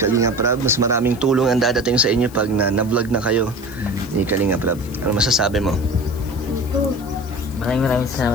Prab, mas maraming tulong ang dadating sa inyo pag na-vlog na kayo ni Kalinga Prab. Ano masasabi mo? Maraming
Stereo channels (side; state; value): left; noise; hiss, 22 dB below the sound